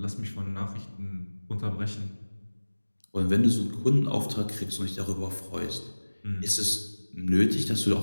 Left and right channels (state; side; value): inverted; both; correlation -1.00